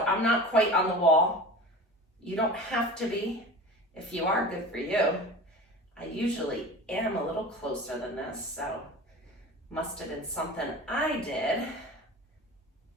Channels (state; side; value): normal; both; correlation 0.35